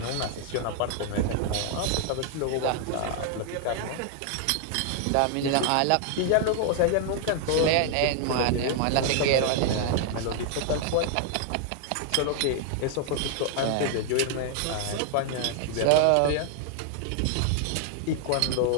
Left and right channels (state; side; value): different; both; correlation 0.00